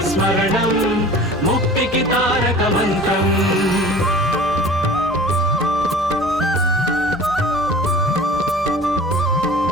స్మరణం ముక్తికి తారక మంత్రం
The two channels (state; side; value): normal; both; correlation 0.43